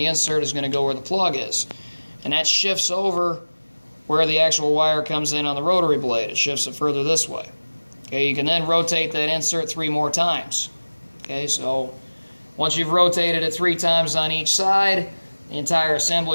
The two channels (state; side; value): inverted; both; correlation -1.00